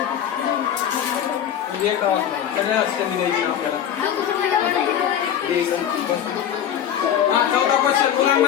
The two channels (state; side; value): quieter; right; 9.6 dB